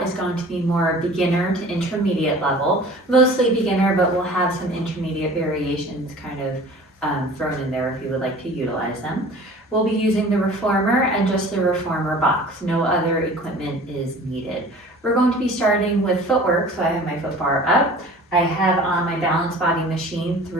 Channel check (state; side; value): normal; both; correlation 0.44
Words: is going to be more beginner to intermediate level, mostly beginner, but we'll have some intermediate variations kind of thrown in there if you would like to utilize them. We'll be using the reformer and just the reformer box. No other equipment is needed. We're going to be starting with footwork, so I have my foot bar up. I have on my balance body machine